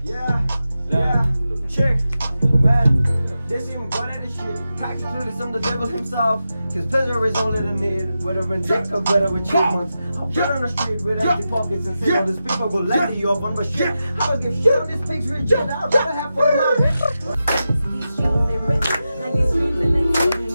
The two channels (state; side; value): inverted; both; correlation -0.90